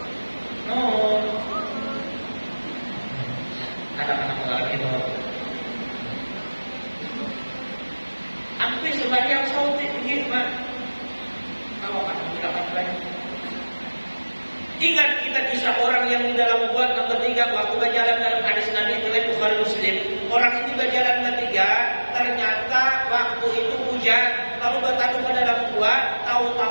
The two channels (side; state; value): both; inverted; correlation -1.00